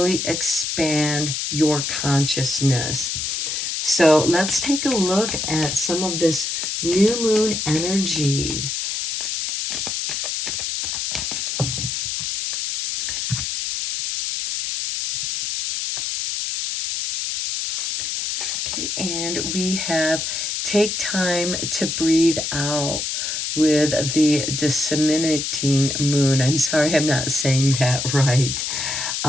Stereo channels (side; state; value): left; noise; hiss, 2 dB below the sound